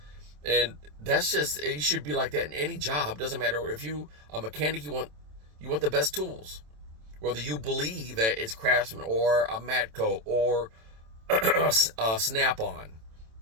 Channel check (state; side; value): late; left; 27 ms